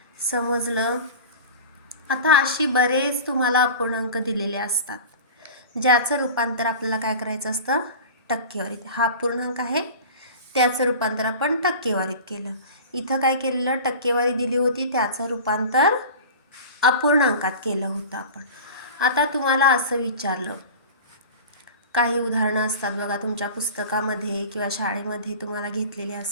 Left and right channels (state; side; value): inverted; both; correlation -0.35